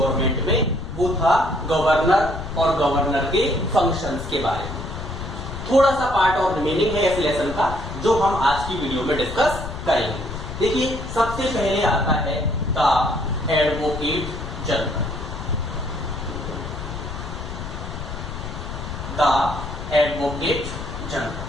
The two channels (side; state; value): left; noise; rumble, 7 dB below the sound